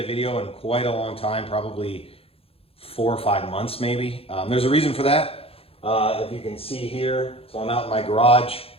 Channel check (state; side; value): late; right; 0.28 ms